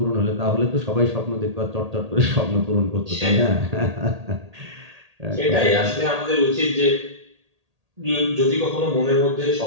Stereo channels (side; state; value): left; late; 1.8 ms